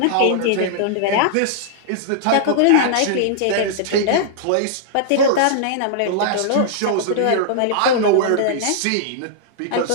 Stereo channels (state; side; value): different; both; correlation -0.01